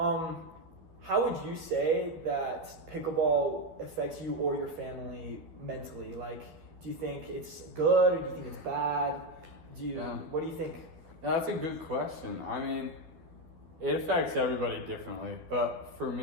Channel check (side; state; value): left; late; 12 ms